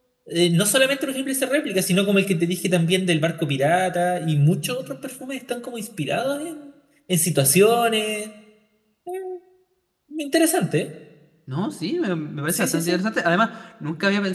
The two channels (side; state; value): both; identical; correlation 1.00